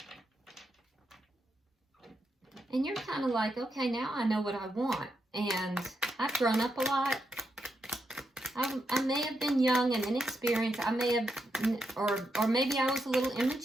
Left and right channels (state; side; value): normal; both; correlation 0.83